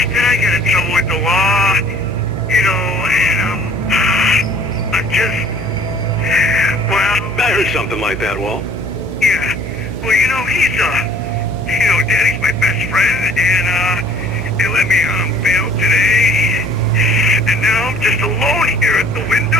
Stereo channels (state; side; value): noise; right; hum, 9 dB below the sound